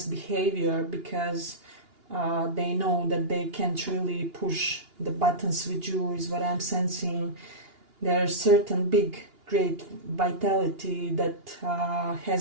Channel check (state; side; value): late; left; 2.8 ms